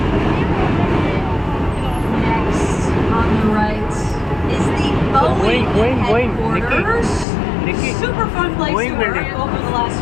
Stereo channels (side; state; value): right; drops out; at 7.2 s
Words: Next, on the right, is the Boeing headquarters. Nikki. Super fun place Boeing to work building. over the